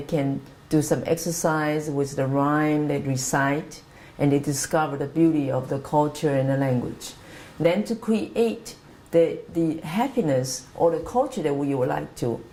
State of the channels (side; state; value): both; identical; correlation 1.00